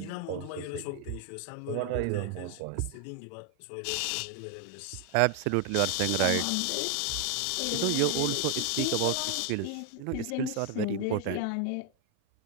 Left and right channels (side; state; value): both; different; correlation 0.00